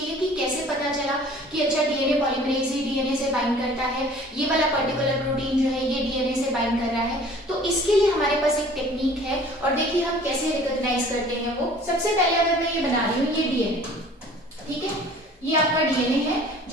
कि कैसे पता चला कि अच्छा DNA पॉलीमरेज ही DNA से बाइंड करता है, ये वाला पर्टिकुलर प्रोटीन जो है ये DNA से बाइंड कर रहा है। तो इसके लिए हमारे पास एक टेक्निक है, और देखिए हम कैसे रिकॉग्नाइज करते हैं वो। सबसे पहले अगर मैं ये बना रही हूँ, ये DNA, ठीक है, ये आपका DNA है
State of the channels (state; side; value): normal; both; correlation 0.50